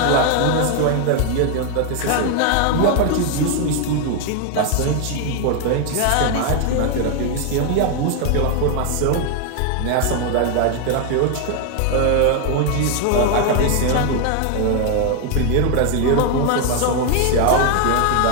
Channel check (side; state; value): both; different; correlation 0.01